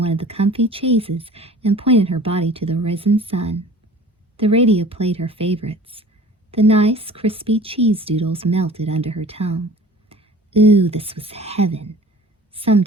of the comfy chaises and pointed her body to the risen sun. The radio played her favorites. The nice, crispy cheese doodles melted under her tongue. Ooh, this was heaven.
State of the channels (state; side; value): normal; both; correlation 0.44